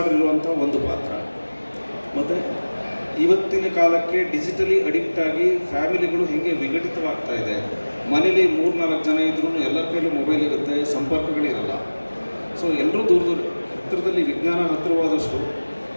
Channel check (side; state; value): both; inverted; correlation -1.00